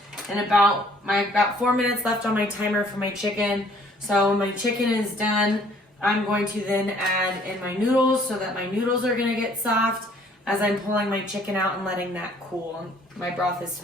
in about 4 minutes left on my timer for my chicken. So when my chicken is done, I'm going to then add in my noodles so that my noodles are going to get soft as I'm pulling my chicken out and letting that cool. My broth is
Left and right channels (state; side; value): normal; both; correlation 0.59